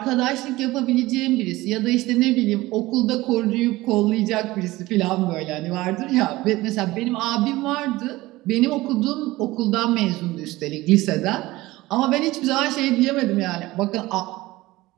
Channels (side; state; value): left; quieter; 18.9 dB